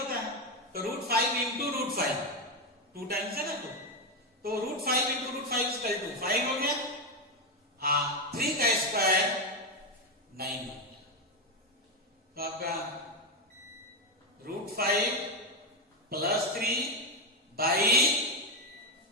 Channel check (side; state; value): both; normal; correlation 0.09